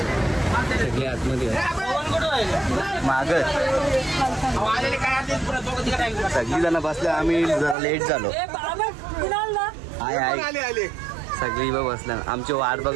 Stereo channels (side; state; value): left; drops out; at 7.8 s